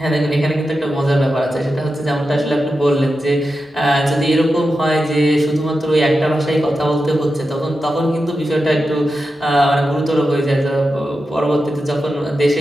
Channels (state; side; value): normal; both; correlation 0.90